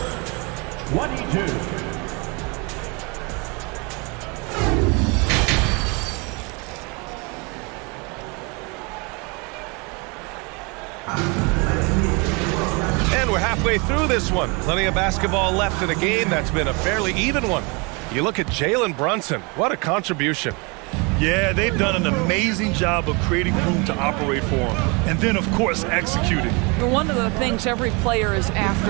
22. And we're halfway through this one. Plenty of basketball left in a game that's been a fairly even one. You look at Jalen Brunson. What a contribution. Yeah, they've done an amazing job of creating room to operate for him. And then, of course, executing. One of the things every player is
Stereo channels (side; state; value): left; quieter; 29.9 dB